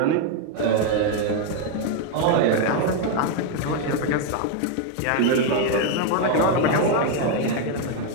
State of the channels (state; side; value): different; both; correlation 0.01